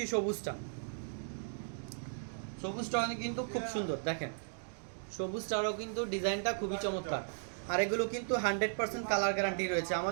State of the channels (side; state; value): left; silent; digital silence